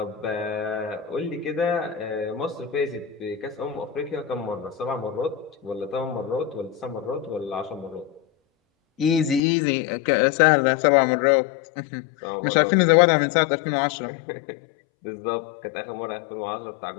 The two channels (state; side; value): drops out; right; at 9.4 s